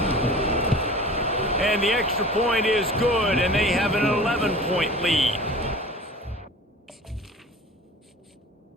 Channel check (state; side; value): normal; both; correlation 0.40